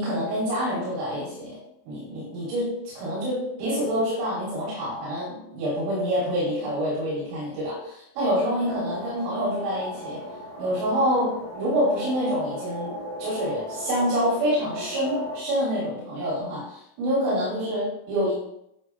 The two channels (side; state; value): left; late; 27 ms